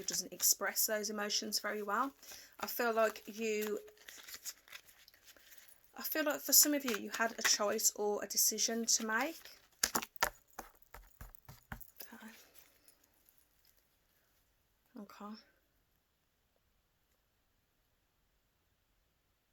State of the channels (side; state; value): both; identical; correlation 1.00